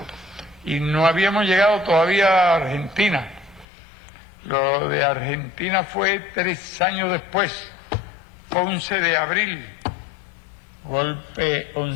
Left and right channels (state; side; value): drops out; right; at 3.7 s